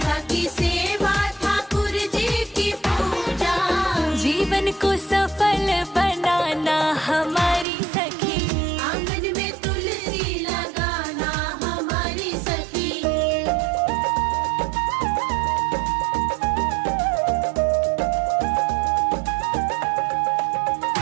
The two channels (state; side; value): drops out; left; at 7.7 s